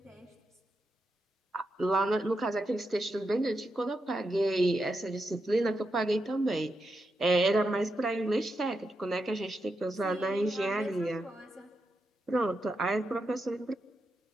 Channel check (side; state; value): both; normal; correlation 0.85